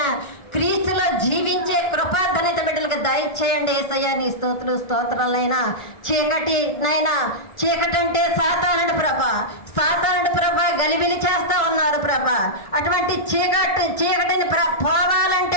క్రీస్తులో జీవించే కృపా ధన్యత బిడ్డలకు దయచేయండి యేసయ్య. నీ స్తోత్రాలైనా. చీకటి నైనా, చీకటి అంటే సాతానుడు ప్రభా. సాతానుడు ప్రభా గలిబిలి చేస్తా ఉన్నారు ప్రభా. అటువంటి చీకటిని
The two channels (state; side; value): late; right; 1.7 ms